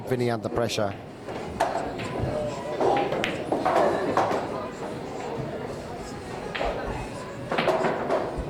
Vinnie under pressure.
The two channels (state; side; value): identical; both; correlation 1.00